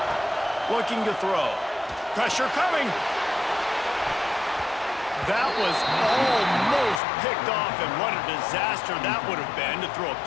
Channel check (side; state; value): right; drops out; at 7.0 s